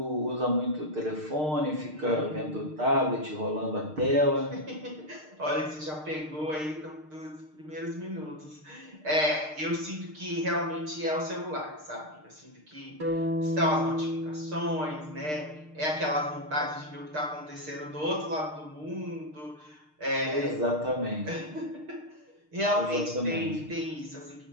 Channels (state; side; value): late; left; 6.6 ms